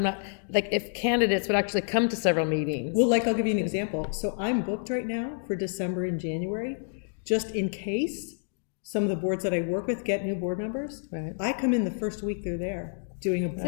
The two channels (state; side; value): silent; right; digital silence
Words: like, if candidates would actually come to several meetings. Well, like, I'll give you an example. So I'm booked right now for December and January, just in case some of the boards that I work with get new board members. Right. I come in the first week they're there, doing a I new